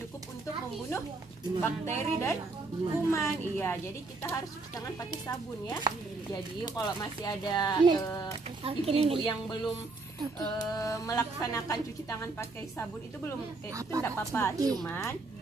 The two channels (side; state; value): left; quieter; 3.5 dB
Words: untuk membunuh bakteri dan kuman. Iya, jadi kita harus cuci tangan pakai sabun ya. Jadi kalau masih ada ibu-ibu yang belum melaksanakan cuci tangan pakai sabun itu itu tidak apa-apa, cuman